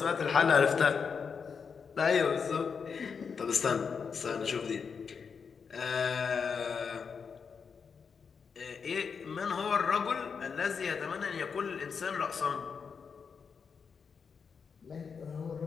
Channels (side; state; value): right; quieter; 6.0 dB